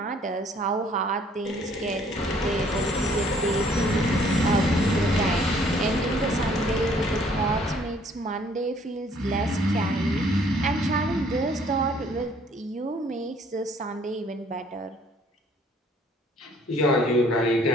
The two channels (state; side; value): normal; both; correlation 0.60